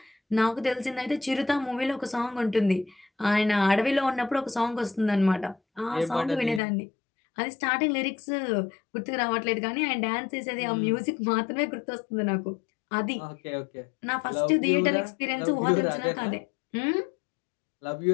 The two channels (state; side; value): drops out; right; at 6.6 s